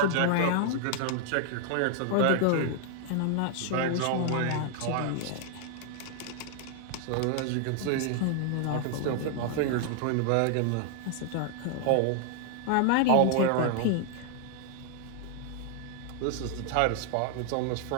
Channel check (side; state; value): both; different; correlation 0.00